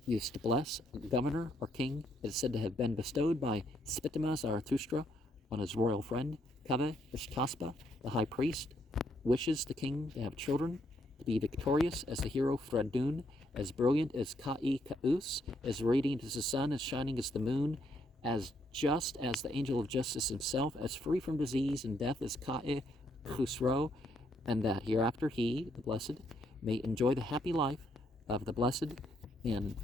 used to bless a governor or king. It is said to have been bestowed by Spitama Zarathustra on his royal friend, Kave Ishtaspa. The high priest wishes the king to have children, to be victorious as the hero Fredun, as brilliant as Ka'i Ka'us, as radiant as the sun, as shining as the moon, as just as the angel of justice himself, as free from disease and death as Ka'i Khusro, and that hereafter he, the blessed, may enjoy the happy life of the blessed in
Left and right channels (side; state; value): both; normal; correlation 0.73